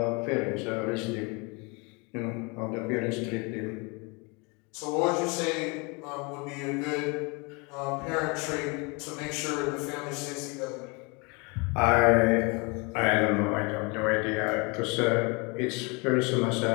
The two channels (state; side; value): quieter; right; 29.8 dB